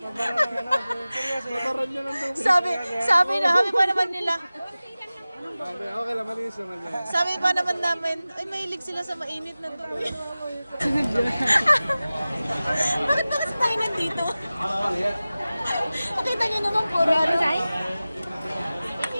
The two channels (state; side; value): inverted; both; correlation -0.97